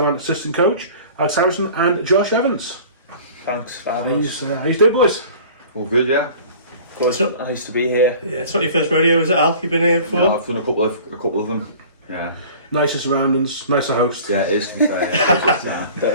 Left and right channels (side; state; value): both; inverted; correlation -0.45